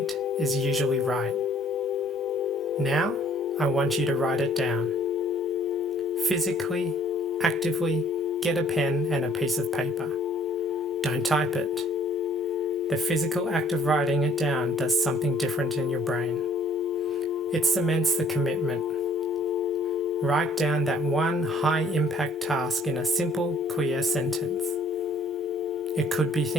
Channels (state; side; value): normal; both; correlation 0.58